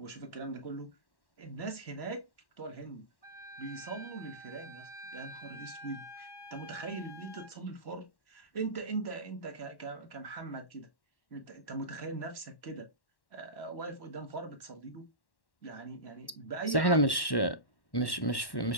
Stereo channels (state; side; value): late; right; 1.1 ms